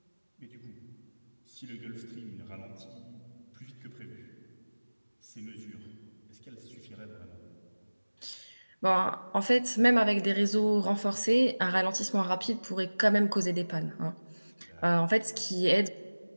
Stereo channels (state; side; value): inverted; both; correlation -1.00